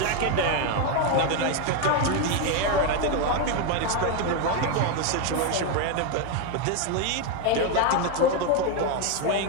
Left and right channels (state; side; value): different; both; correlation 0.02